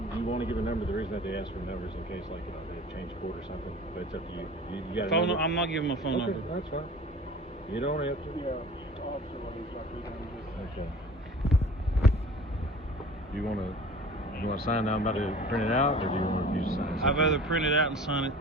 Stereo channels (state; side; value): normal; both; correlation 0.43